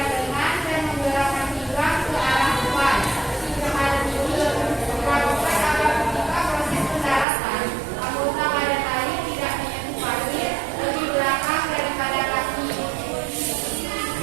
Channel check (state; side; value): drops out; left; at 7.2 s